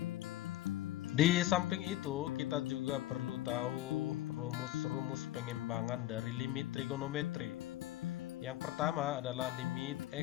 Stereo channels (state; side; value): quieter; right; 15.1 dB